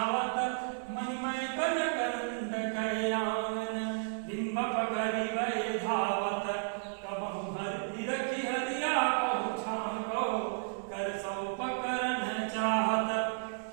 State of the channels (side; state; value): left; silent; digital silence